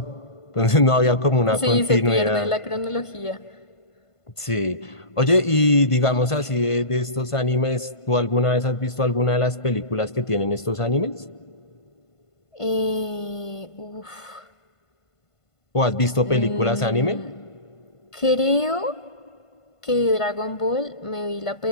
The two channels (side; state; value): right; late; 1.5 ms